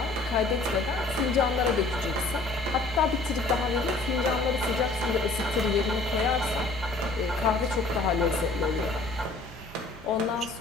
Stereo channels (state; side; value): quieter; right; 3.3 dB